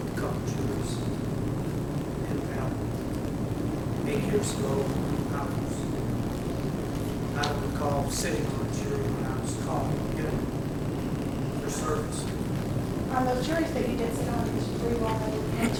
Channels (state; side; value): identical; both; correlation 1.00